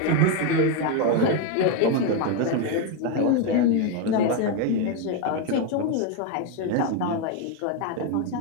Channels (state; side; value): different; both; correlation 0.02